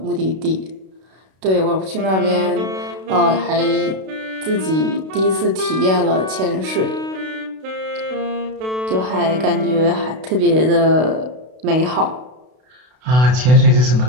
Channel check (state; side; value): late; left; 32 ms